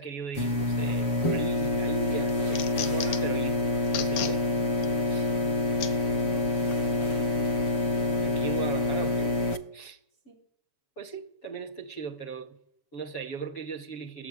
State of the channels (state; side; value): late; right; 7.1 ms